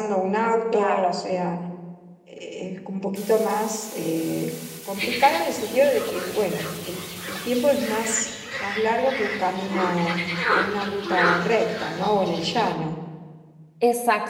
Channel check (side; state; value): both; identical; correlation 1.00